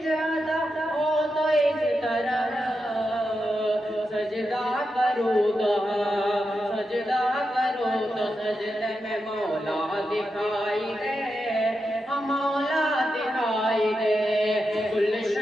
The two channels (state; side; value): normal; both; correlation 0.87